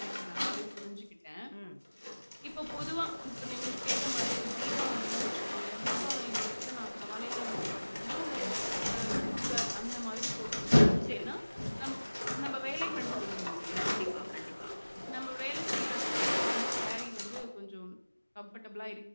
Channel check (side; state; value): both; inverted; correlation -1.00